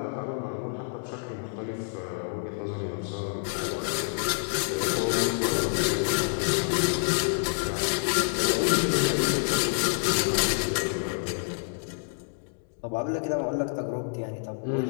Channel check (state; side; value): silent; right; digital silence